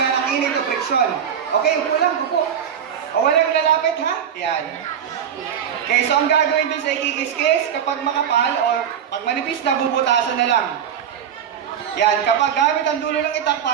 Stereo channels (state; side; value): quieter; left; 8.6 dB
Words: ng init o friction. Okay, upo lang, upo. O walang lalapit, ha? Yan. Okay, so ang gagawin dun sa ikikis-kis, kapag makapal o pag manipis na, bubutasan na lang. Yan, kapag gamit ang dulo ng itak